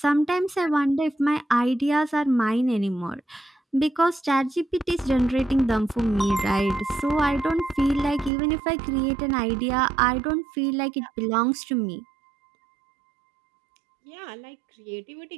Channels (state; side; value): drops out; left; at 8.3 s